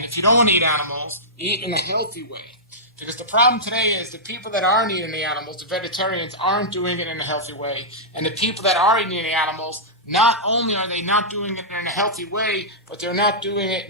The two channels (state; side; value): normal; both; correlation -0.13